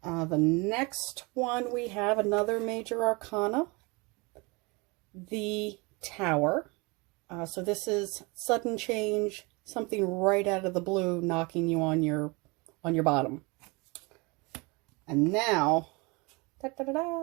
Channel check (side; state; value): left; quieter; 27.3 dB